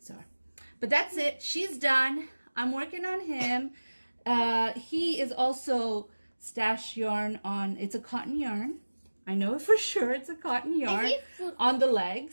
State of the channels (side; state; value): both; inverted; correlation -1.00